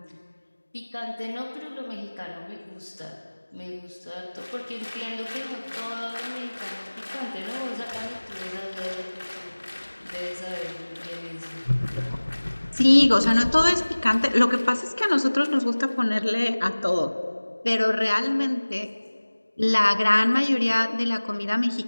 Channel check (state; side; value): inverted; both; correlation -1.00